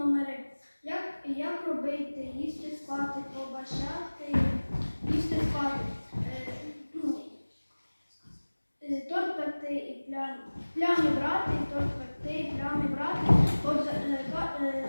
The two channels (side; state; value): both; inverted; correlation -1.00